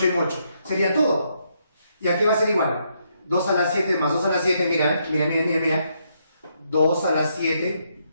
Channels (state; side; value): inverted; both; correlation -0.76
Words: en 8. Sería todo. ¿Y aquí va a ser igual? 2 a la 7 más 2 a la 7, mira. 2 a la 7